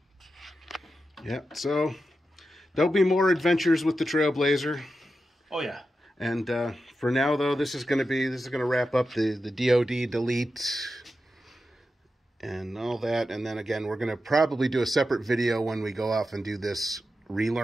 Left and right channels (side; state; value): both; normal; correlation 0.90